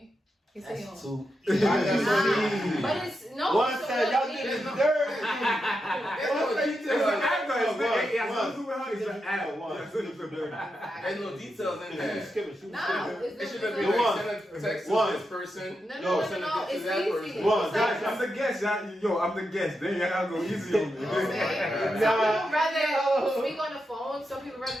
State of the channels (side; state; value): both; normal; correlation 0.86